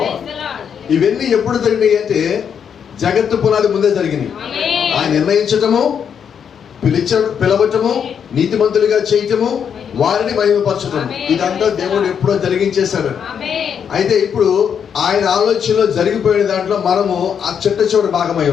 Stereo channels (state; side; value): quieter; right; 7.6 dB